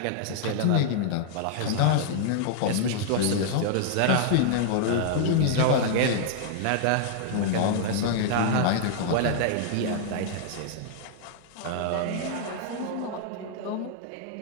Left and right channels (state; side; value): different; both; correlation -0.01